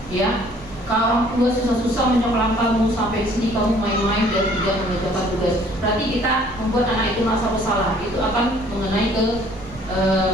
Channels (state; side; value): normal; both; correlation 0.57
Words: Ya, kalau orang tua susah-susah menyekolah kamu sampai di sini kamu main-main dan tidak mengerjakan tugas. Berarti kita membuat anak itu merasa bersalah. Itu akan mengenai ke